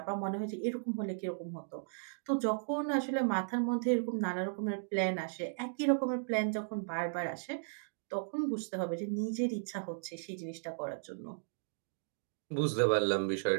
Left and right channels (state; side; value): silent; left; digital silence